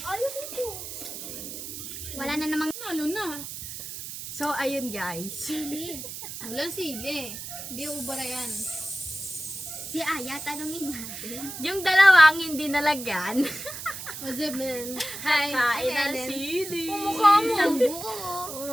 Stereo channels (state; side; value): noise; right; hiss, 9 dB below the sound